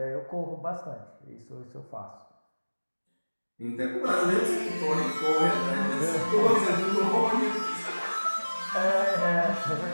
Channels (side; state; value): both; inverted; correlation -1.00